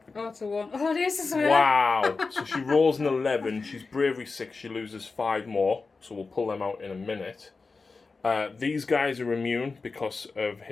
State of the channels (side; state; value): right; quieter; 4.2 dB